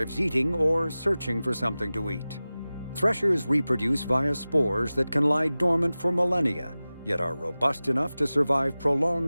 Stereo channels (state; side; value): inverted; both; correlation -0.97